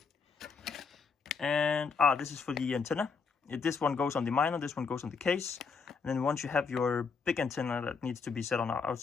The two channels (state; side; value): quieter; right; 5.3 dB